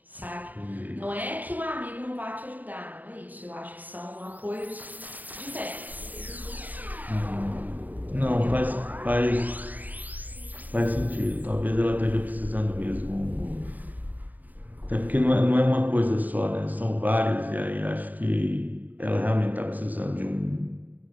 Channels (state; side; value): late; left; 0.082 ms